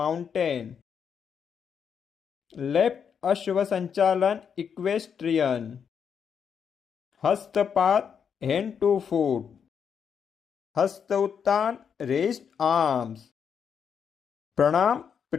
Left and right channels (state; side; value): quieter; right; 7.2 dB